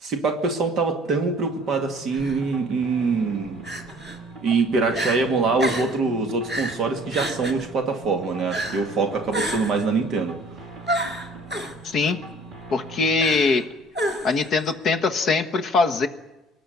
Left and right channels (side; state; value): both; normal; correlation 0.52